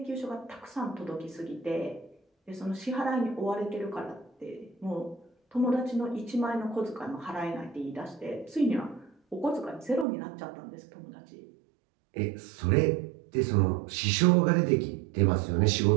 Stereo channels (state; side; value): drops out; left; at 10.1 s